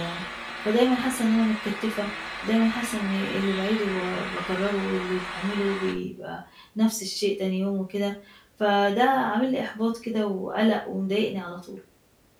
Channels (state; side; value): identical; both; correlation 1.00